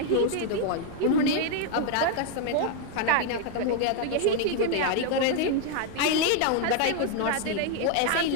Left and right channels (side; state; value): both; different; correlation 0.00